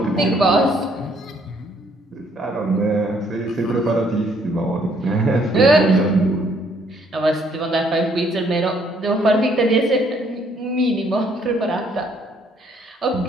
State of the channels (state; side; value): normal; both; correlation 0.66